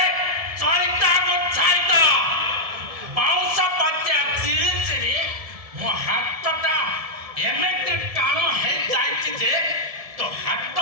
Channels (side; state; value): left; late; 1.7 ms